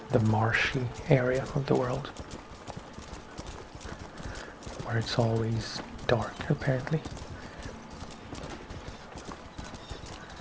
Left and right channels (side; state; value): both; identical; correlation 1.00